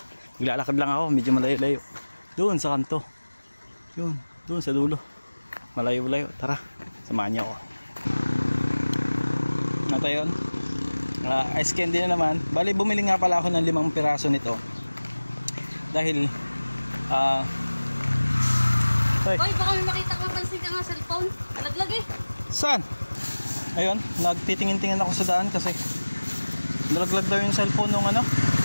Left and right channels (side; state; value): both; inverted; correlation -1.00